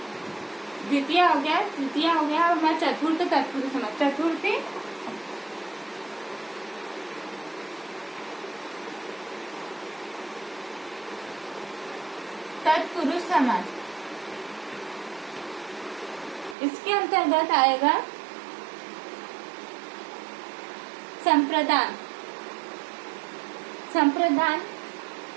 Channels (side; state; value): left; drops out; at 16.6 s